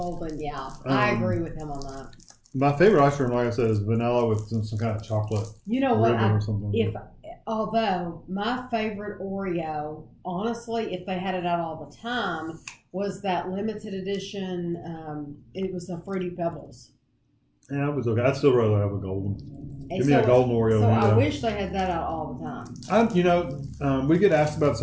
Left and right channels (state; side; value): identical; both; correlation 1.00